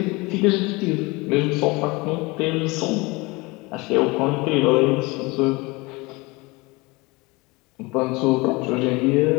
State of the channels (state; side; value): quieter; right; 24.5 dB